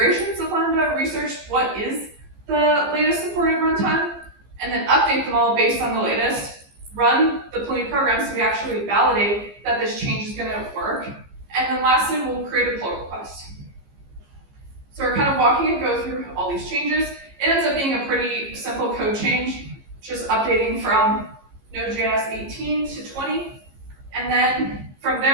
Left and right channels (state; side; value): late; left; 15 ms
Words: of Lambda, research what is the latest supported runtime, and then update them all based on the latest, run the Pulumi program so we actually validate that this change is going to work, and then lastly, we'll create a pull request. So we're kind of walking and go through all these changes. It ends up being a pretty simple code change, just updating from Node.js 18 to 20. And then from